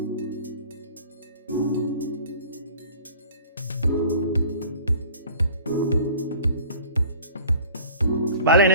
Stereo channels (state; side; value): inverted; both; correlation -0.46